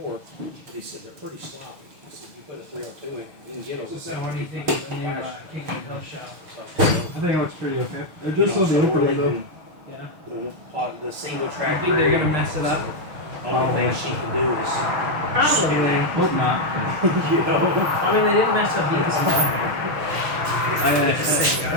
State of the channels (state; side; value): late; left; 6.5 ms